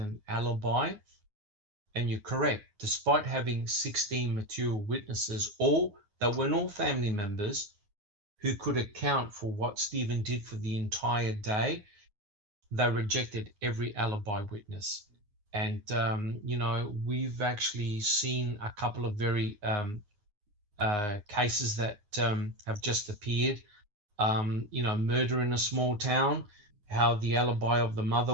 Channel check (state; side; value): late; left; 9.6 ms